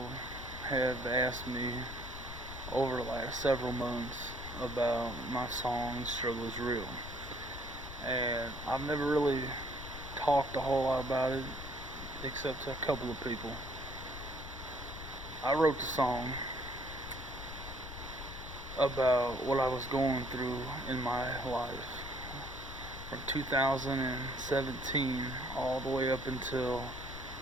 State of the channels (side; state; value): left; noise; rumble, 11 dB below the sound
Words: have asked me over the last several months about my song Struggle is Real. And I've never really talked a whole lot about it except to a couple of people. I wrote the song about what I was going through in my life from 2017 all the way up until